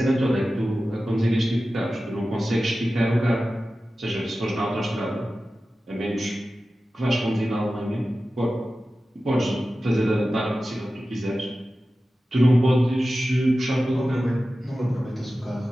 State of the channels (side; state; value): both; normal; correlation 0.94